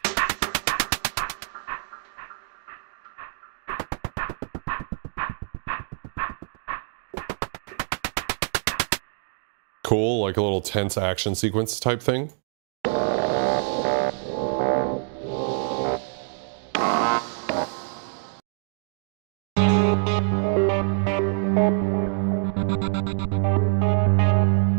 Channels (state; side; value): silent; left; digital silence